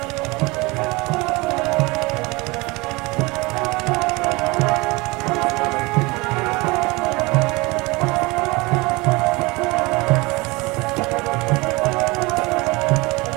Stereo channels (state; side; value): quieter; left; 24.4 dB